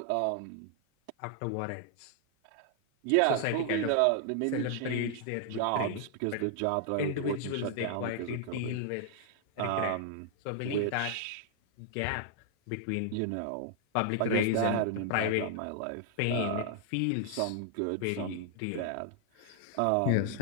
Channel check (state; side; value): different; both; correlation -0.01